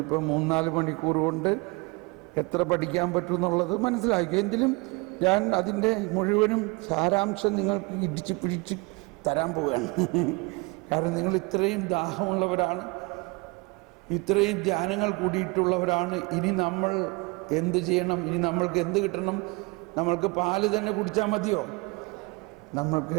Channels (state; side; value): quieter; left; 27.4 dB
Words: 3-4 മണിക്കൂർ കൊണ്ട് എത്ര പഠിക്കാൻ പറ്റുമെന്നുള്ളത് മനസ്സിലാക്കി. എങ്കിലും ഞാൻ അതിൻ്റെ മുഴുവനും സാരാംശം നിങ്ങൾക്ക് ഇടിച്ച് പിടിച്ച് തരാൻ പോവുകയാണ്. കാരണം നിങ്ങൾ ഇത്രയും ദാഹമുള്ളവരാണ്, ഇത്രയും ധ്യാനങ്ങൾ കൂടിയിട്ടുള്ളവരാണ്. ഇനി നമ്മൾ എന്ത് ചെയ്യണം? ഇനി നമ്മൾക്ക് എന്ത് കിട്ടണം? നമ്മൾക്ക് പാല് തന്നെ കുടിച്ചാൽ മതിയോ?